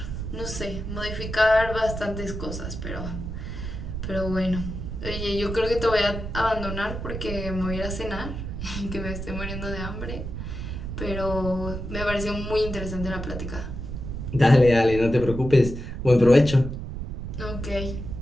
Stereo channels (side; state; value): right; noise; rumble, 6 dB below the sound